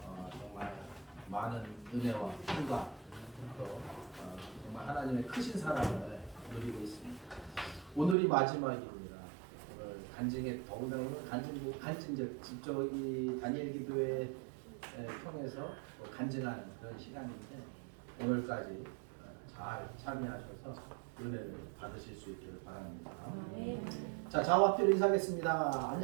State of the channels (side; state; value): left; drops out; at 8.2 s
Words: 정말 많은 은혜와 힘과 또 정말 하나님의 크신 사랑을 누리고 있습니다. 오늘이 마지막입니다. 오늘 간증에 더구나 오늘 간증적 직접 이 다니엘 기도회 통해서 간증하는 그런 시간인데 오늘까지 잘 참여하셔서 은혜를 받으실 수 있기를 바랍니다. 자, 좌우앞뒤로 인사하겠습니다.